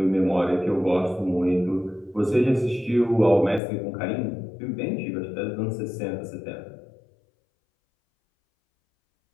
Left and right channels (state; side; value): drops out; right; at 3.6 s